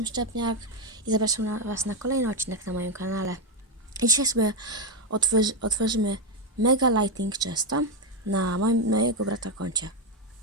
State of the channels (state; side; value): normal; both; correlation 0.06